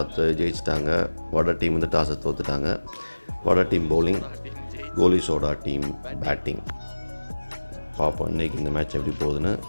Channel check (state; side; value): inverted; both; correlation -1.00